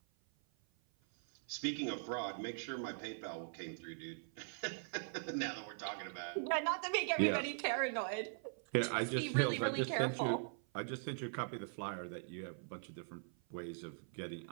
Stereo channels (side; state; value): left; silent; 50 dB below the other